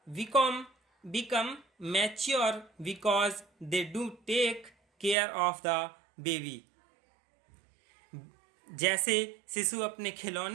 become mature because they do take care of the baby। जैसे शिशु अपने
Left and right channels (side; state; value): left; drops out; at 5.2 s